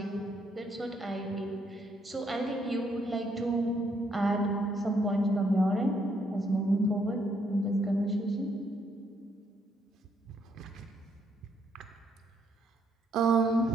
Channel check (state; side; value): normal; both; correlation 0.72